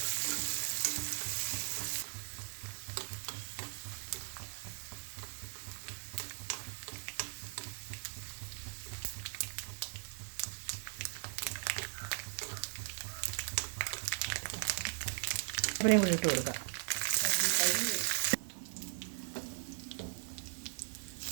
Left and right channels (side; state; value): left; silent; 52 dB below the other